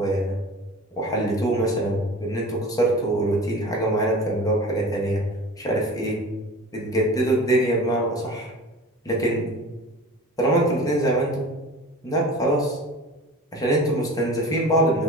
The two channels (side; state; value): both; normal; correlation 0.37